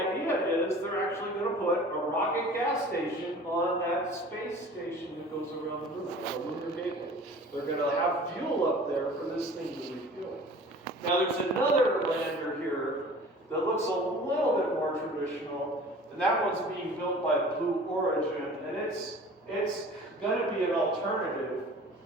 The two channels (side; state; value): both; normal; correlation 0.44